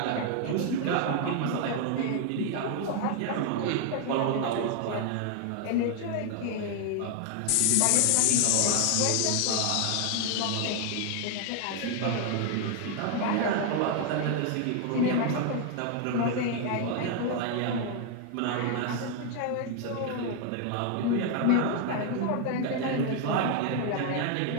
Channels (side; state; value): both; different; correlation 0.00